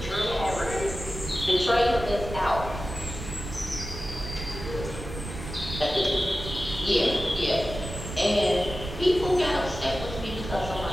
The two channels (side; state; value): right; noise; rumble, 9 dB below the sound